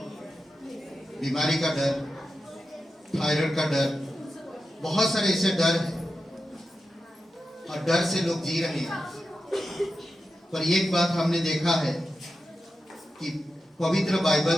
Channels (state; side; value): normal; both; correlation 0.90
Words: बीमारी का डर, थायराइड का डर, बहुत सारे ऐसे डर हैं और डर से लोग जी रहे हैं। पर एक बात हमने देखा है कि पवित्र बाइबल